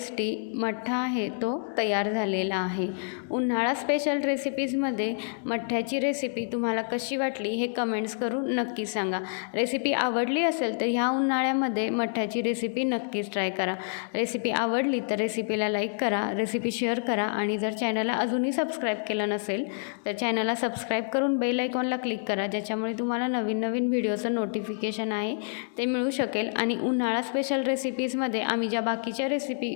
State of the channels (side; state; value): right; silent; digital silence